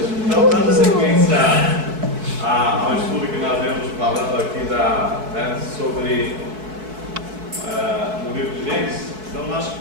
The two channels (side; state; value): left; late; 4.6 ms